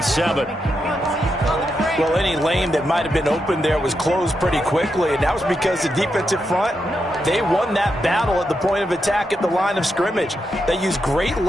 Well, any lane that might have been open there was closed pretty quickly, and that was because the defensive front, they won that battle at the point of attack at the line of scrimmage. They used great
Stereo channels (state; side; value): normal; both; correlation 0.84